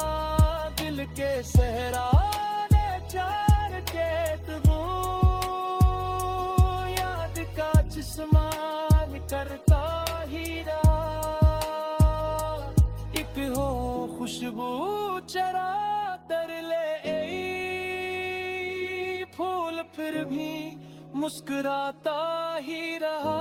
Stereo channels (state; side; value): identical; both; correlation 1.00